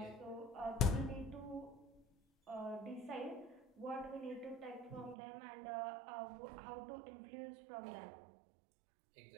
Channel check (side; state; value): left; drops out; at 5.2 s